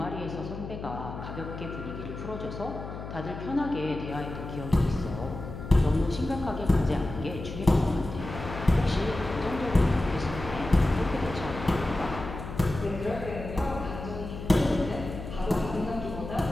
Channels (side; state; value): left; noise; hum, 9 dB below the sound